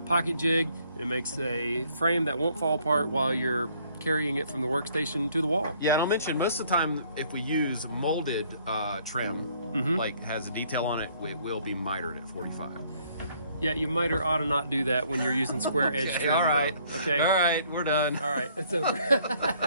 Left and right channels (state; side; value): inverted; both; correlation -0.63